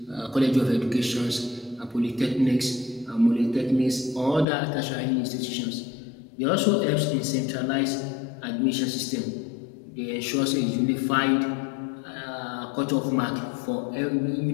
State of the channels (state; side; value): drops out; right; at 4.5 s